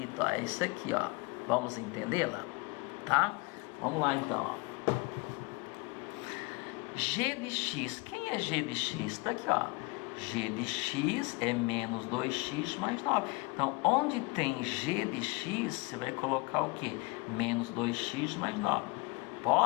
ó, é isso aqui, ó. Vamos entendê-la? Tá? Vamos lá então, ó. G de x, quem é g de x? Está aqui, ó. G de x é menos 2x mais 9. Então, onde tem g de x, você vai colocar o quê? Menos 2x mais 9.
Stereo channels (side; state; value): right; quieter; 26.1 dB